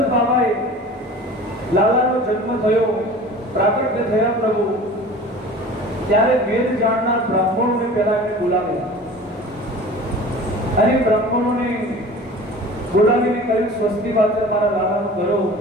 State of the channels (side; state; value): both; normal; correlation 0.40